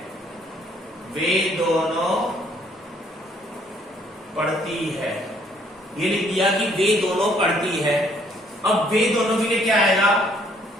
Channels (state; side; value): normal; both; correlation 0.64